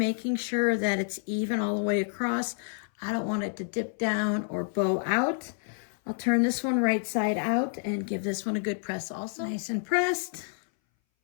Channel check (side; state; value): right; silent; 59 dB below the other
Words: sure that it's even all the way across. I don't want it to dip down or bow out. I'll turn this one right side out and give this one a good press also. Nice and pressed.